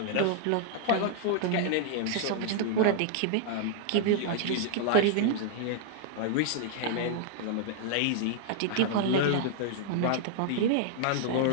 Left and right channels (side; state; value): both; different; correlation -0.01